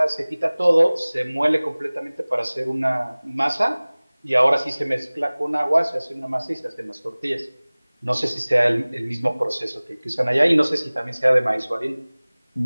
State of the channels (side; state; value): both; inverted; correlation -1.00